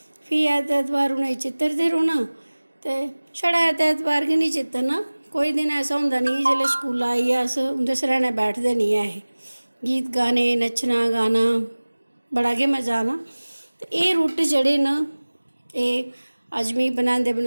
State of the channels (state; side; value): inverted; both; correlation -1.00